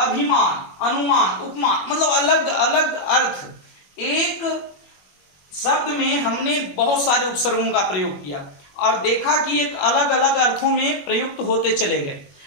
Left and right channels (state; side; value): late; right; 21 ms